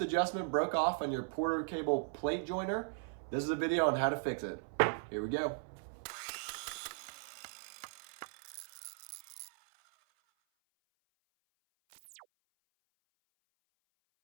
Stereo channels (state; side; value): silent; left; 53 dB below the other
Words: adjustment broke off on your Porter cable plate joiner, this is a video on how to fix it. Here we go.